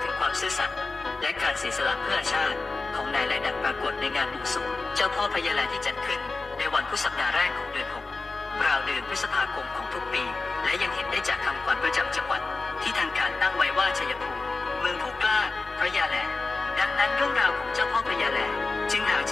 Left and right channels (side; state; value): right; quieter; 3.7 dB